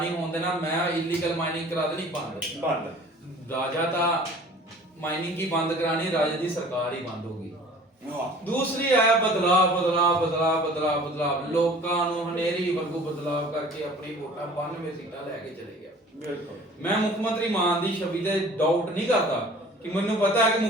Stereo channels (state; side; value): normal; both; correlation 0.47